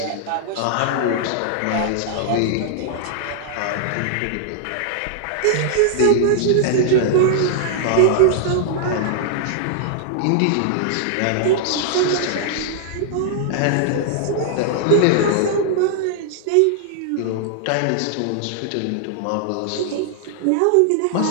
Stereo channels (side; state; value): both; different; correlation -0.01